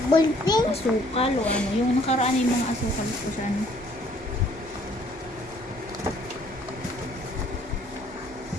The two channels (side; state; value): both; normal; correlation 0.61